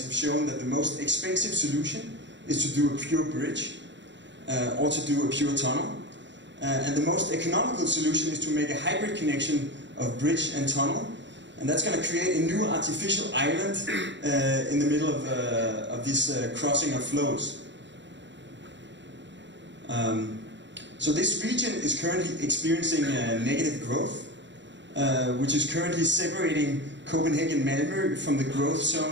have shown that the most expensive solution is to do a pure bridge or to do a pure tunnel. And the most economical solution is to make a hybrid connection of bridge and tunnel. And that's going to create a new artificial island in the middle of this crossing of flows. So this region is currently experiencing negative growth, which is currently separating Copenhagen Malmö from the growth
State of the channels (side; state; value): left; late; 0.53 ms